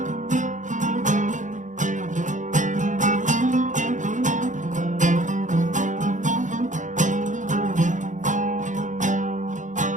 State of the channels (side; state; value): left; late; 0.36 ms